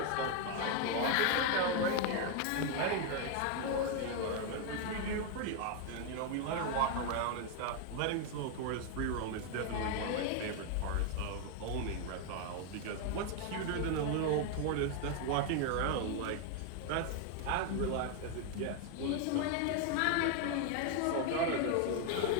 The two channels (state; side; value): different; both; correlation 0.01